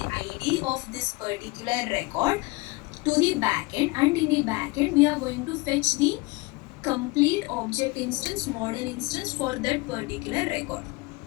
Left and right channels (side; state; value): right; quieter; 24.1 dB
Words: ID of this particular record to the backend, and in the backend we are going to fetch the complete object instance, model instance for that particular record.